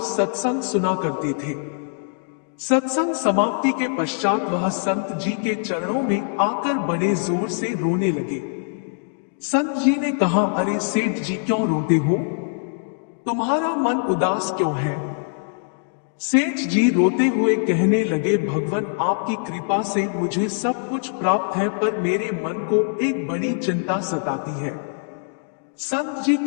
सत्संग सुना करते थे, सत्संग समाप्ति के पश्चात वह संत जी के चरणों में आकर बड़े जोर से रोने लगे। संत जी ने कहा, अरे सेठ जी क्यों रोते हो? तुम्हारा मन उदास क्यों है? सेठ जी रोते हुए कहने लगे, भगवान आपकी कृपा से मुझे सब कुछ प्राप्त है, पर मेरे मन को एक बड़ी चिंता सताती है। संत जी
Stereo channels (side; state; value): right; silent; digital silence